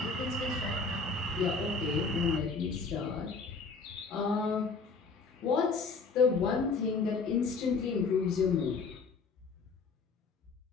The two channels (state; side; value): quieter; right; 4.4 dB